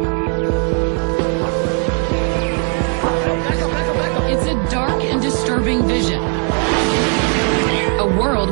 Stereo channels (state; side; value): quieter; left; 37.8 dB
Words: It's a dark and disturbing vision. A